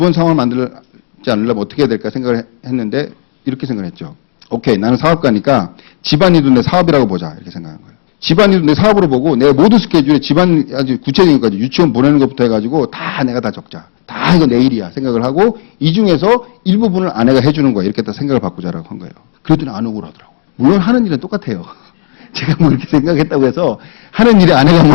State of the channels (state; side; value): silent; right; 66 dB below the other